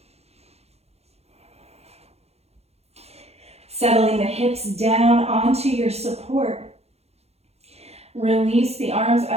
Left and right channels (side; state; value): left; late; 0.30 ms